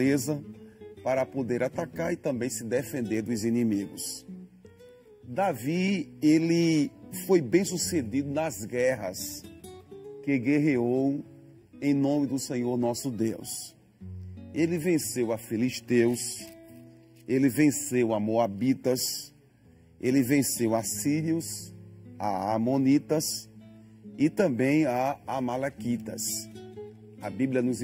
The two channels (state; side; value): identical; both; correlation 1.00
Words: para poder atacar e também se defender dos inimigos. Davi, ele foi bem sucedido nas guerras que guerreou em nome do Senhor nosso Deus. Ele venceu a filisteus, ele venceu a moabitas, ele venceu a sírios, a amonitas e também a amalequitas. A Bíblia nos